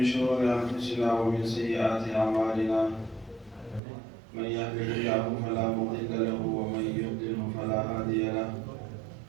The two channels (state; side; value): drops out; left; at 3.8 s